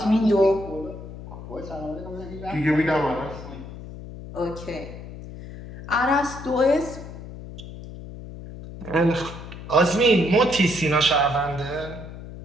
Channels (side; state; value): left; noise; hum, 13 dB below the sound